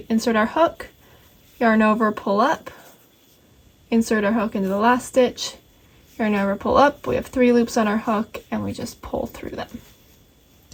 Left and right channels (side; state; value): both; identical; correlation 1.00